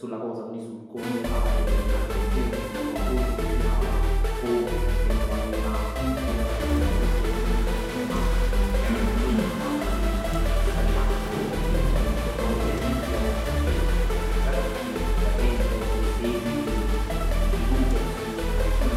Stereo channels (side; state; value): both; identical; correlation 1.00